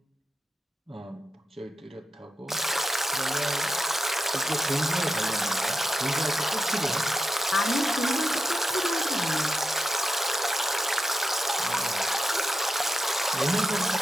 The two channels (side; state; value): both; normal; correlation 0.85